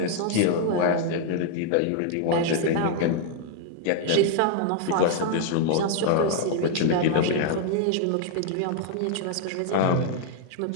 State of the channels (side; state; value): both; different; correlation 0.00